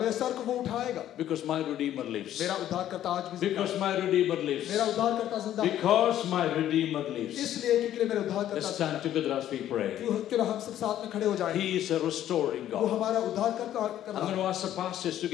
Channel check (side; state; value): right; quieter; 11.9 dB